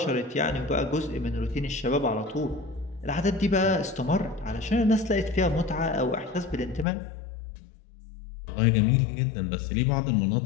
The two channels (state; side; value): drops out; right; at 6.9 s